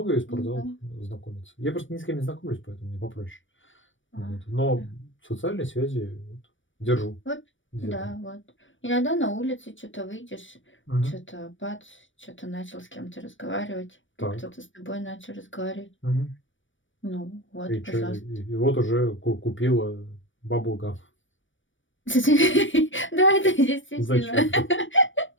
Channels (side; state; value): right; late; 0.56 ms